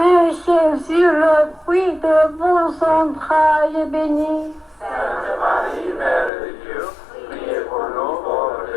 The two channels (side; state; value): right; drops out; at 6.3 s